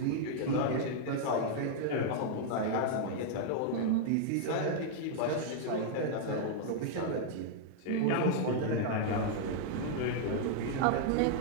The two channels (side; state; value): both; different; correlation -0.01